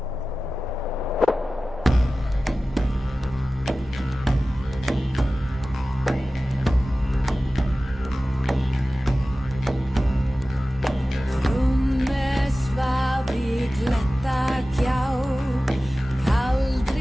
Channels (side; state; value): both; normal; correlation 0.96